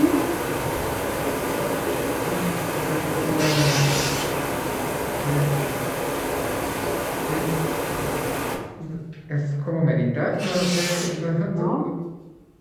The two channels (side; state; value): both; identical; correlation 1.00